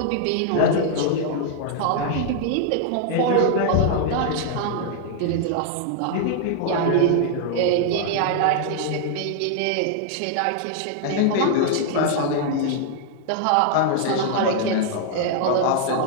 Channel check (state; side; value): different; both; correlation 0.00